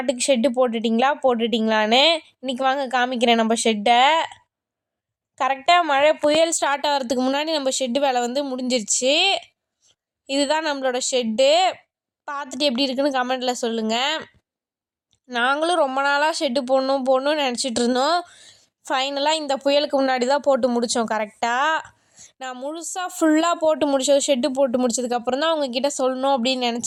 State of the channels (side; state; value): both; identical; correlation 1.00